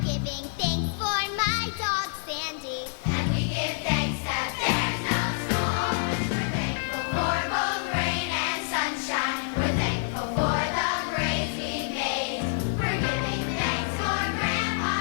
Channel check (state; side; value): silent; right; digital silence